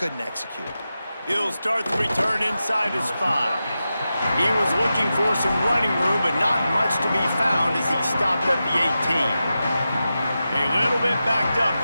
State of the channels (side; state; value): both; inverted; correlation -0.91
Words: execute. He'll start the return inside his 5. He was looking for some running room, but not much to be found as he stopped at the 18. A little bit backed up